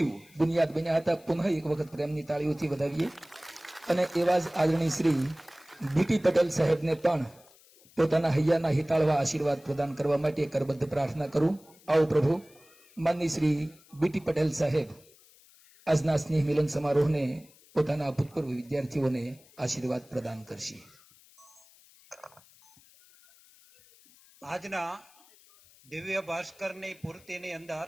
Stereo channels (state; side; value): noise; left; hiss, 27 dB below the sound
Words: બુનિયાદ બન્યા હતા. પુનઃ એક વખત પ્રેમની તાળીઓથી વધાવીએ. અને એવા જ આદરણીય શ્રી બીટી પટેલ સાહેબને પણ પોતાના હૈયાના હિતાળવા આશીર્વાદ પ્રદાન કરવા માટે કરબદ્ધ પ્રાર્થના કરું. આવો પ્રભુ. માનનીય શ્રી બીટી પટેલ સાહેબ આજના સ્નેહ મિલન સમારોહને પોતાના ભૂતપૂર્વ વિદ્યાર્થીઓને આશીર્વાદ પ્રદાન કરશે. આજના દિવ્ય ભાસ્કરની પૂર્તિની અંદર